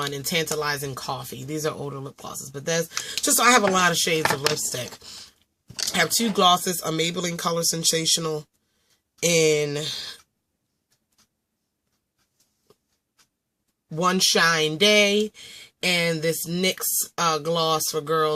in Tantalizing Coffee. These are older lip glosses, but there's just, so I have a lot of shades of lipstick. I have two glosses, a Maybelline Color Sensational in One Shine Day, and this NYX gloss for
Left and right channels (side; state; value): both; identical; correlation 1.00